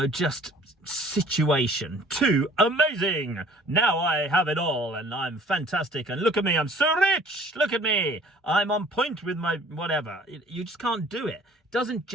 just situation, to amazing. Now I have it all and I'm fantastic and look at me, I'm so rich. Look at me. I'm on point with my whatever. You just can't do it. It doesn't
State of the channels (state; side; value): normal; both; correlation 0.52